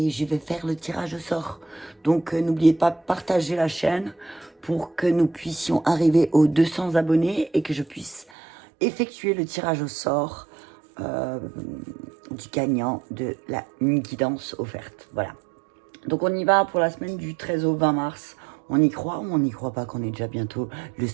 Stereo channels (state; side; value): drops out; left; at 8.2 s